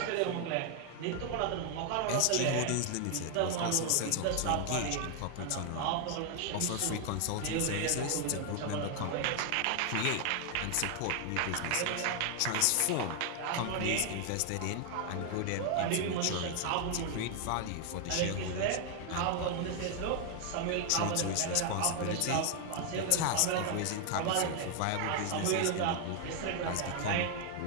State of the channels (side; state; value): both; different; correlation 0.00